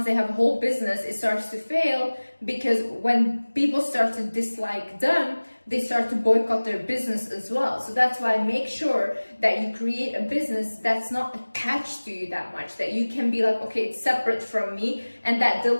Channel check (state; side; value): inverted; both; correlation -1.00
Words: they have a whole business, it starts to fail because when people start to dislike them, they start to boycott their business as well. So that's why make sure that you create a business that's not attached to you that much, that you can be like, okay, it's separate from me, and that